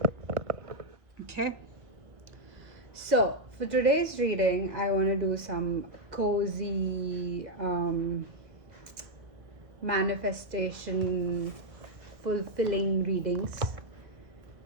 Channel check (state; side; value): late; left; 1.2 ms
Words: Okay. So, for today's reading, I want to do some cozy manifestation fulfilling readings.